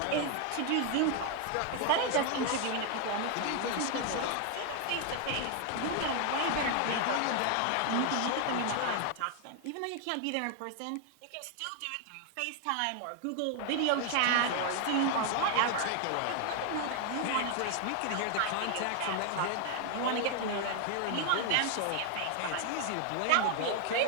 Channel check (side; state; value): both; different; correlation 0.00